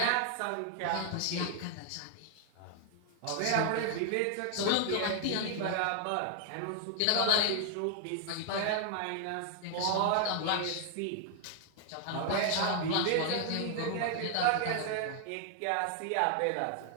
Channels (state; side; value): different; both; correlation 0.00